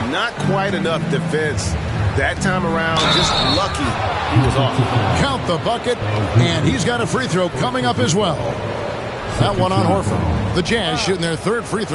Not quite enough defense. That time around, just lucky he was off. Count the bucket, and he's got a free throw coming up as well. That one on Horford. The Jazz shooting their 3rd free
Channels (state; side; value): identical; both; correlation 1.00